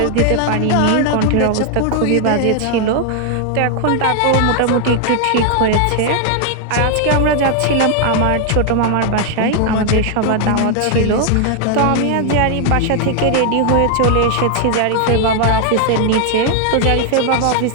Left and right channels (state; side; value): different; both; correlation 0.00